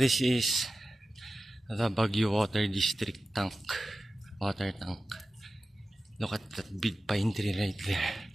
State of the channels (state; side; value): normal; both; correlation 0.94